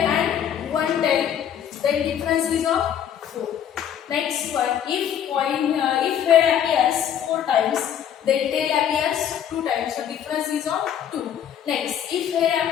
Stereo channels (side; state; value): right; quieter; 9.4 dB